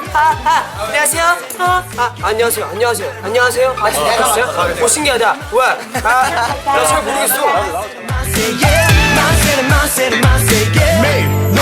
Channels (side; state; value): both; identical; correlation 1.00